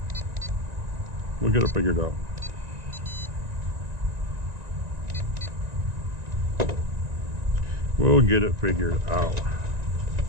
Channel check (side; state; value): left; late; 1.9 ms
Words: we'll get it figured out. We'll get it figured out.